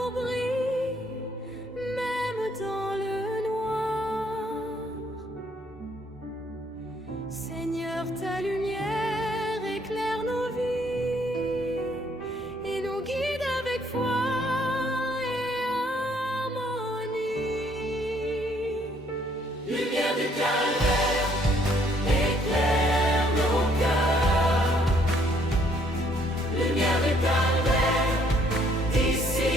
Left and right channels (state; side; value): normal; both; correlation 0.65